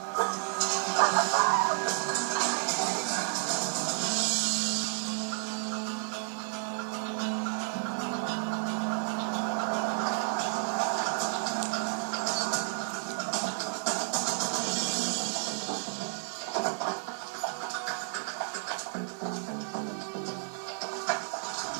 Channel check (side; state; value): left; silent; digital silence